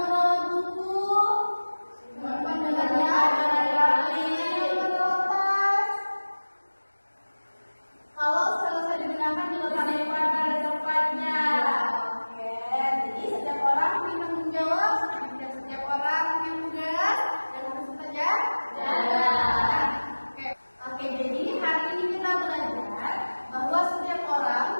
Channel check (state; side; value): inverted; both; correlation -1.00